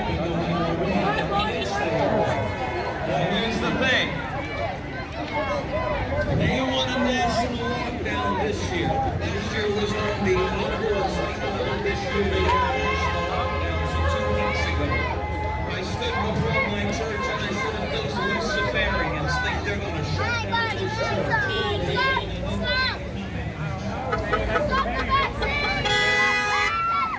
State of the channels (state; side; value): identical; both; correlation 1.00